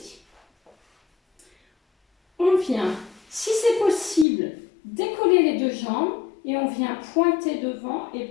On vient, si c'est possible, décoller les deux jambes et on vient pointer devant et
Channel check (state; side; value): drops out; right; at 4.2 s